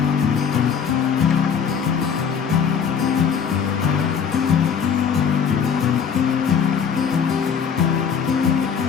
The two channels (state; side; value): quieter; right; 7.0 dB